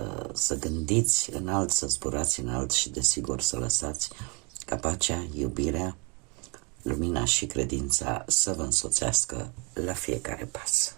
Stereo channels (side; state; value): left; quieter; 31.5 dB